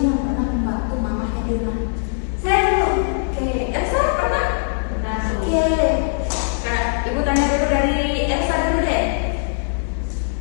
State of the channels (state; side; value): silent; right; 60 dB below the other